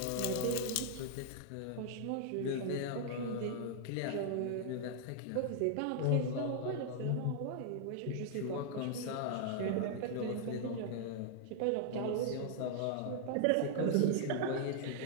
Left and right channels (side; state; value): both; different; correlation -0.01